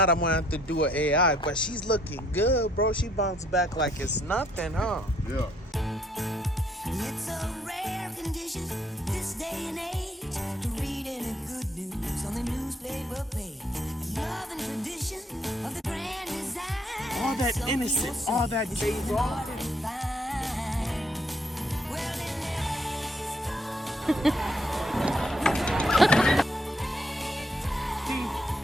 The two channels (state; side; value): normal; both; correlation 0.69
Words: I'm gonna have to do an AI. But she's looking good, bro. She bounced back like it's nothing, huh? Yeah. It's a rare condition this day and age to read any good news on the newspaper page. Love and tradition of the grand design. All that innocent, all that days off. Well,